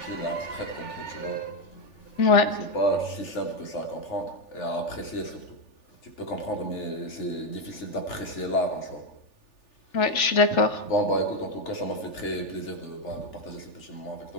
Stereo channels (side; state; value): right; late; 3.4 ms